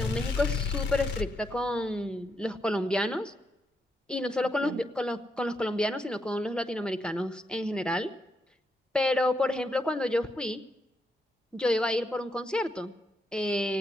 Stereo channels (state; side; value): normal; both; correlation 0.80